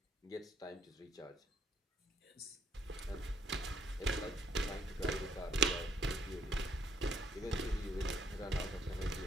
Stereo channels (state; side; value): normal; both; correlation 0.67